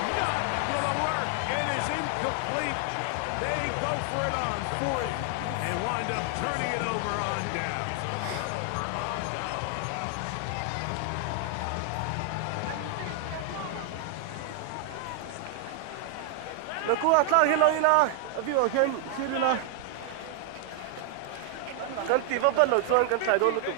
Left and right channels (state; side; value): different; both; correlation 0.00